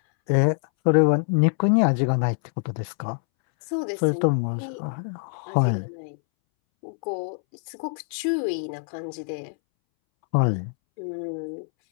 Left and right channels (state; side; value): silent; right; 62 dB below the other